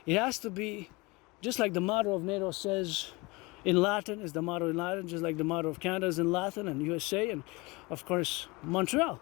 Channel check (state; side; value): quieter; right; 24.8 dB